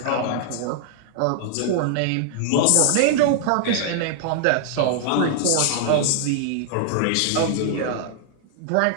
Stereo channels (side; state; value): both; different; correlation 0.00